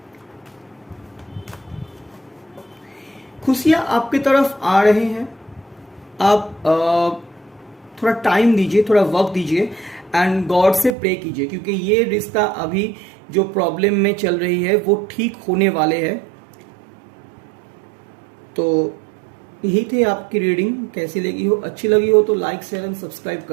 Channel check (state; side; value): drops out; left; at 10.9 s